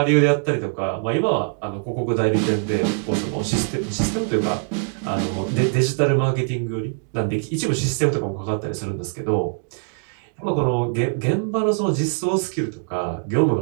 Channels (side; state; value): left; silent; 64 dB below the other